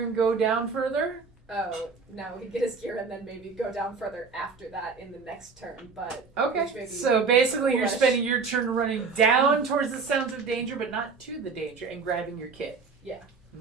and go down further? Oh, no, he'd get his gear and then maybe go down further after that in the next turn, but... which may Okay. be So basically, you're foolish. spending your turn running down towards the sounds of danger, but not to the danger, and grabbing your kit. Yeah.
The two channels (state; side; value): quieter; left; 4.9 dB